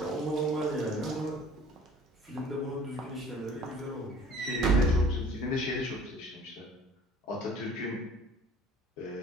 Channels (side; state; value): both; normal; correlation 0.50